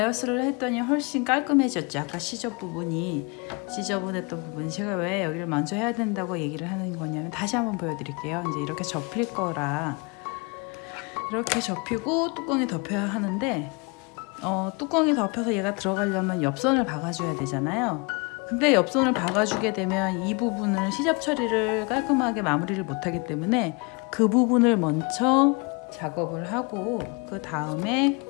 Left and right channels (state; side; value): quieter; right; 30.3 dB